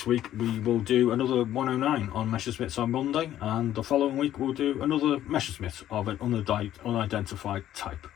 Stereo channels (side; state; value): right; quieter; 12.2 dB